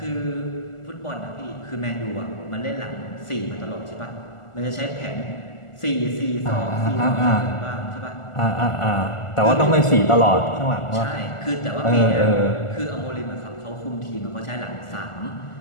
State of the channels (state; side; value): late; right; 1.4 ms